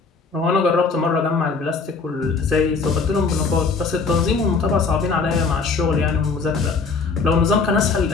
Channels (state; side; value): quieter; right; 4.5 dB